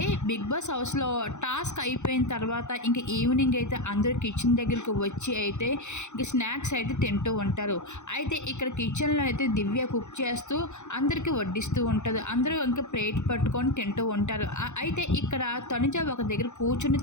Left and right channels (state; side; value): late; right; 0.83 ms